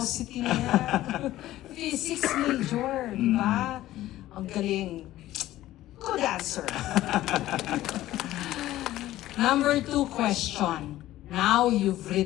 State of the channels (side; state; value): right; quieter; 14.9 dB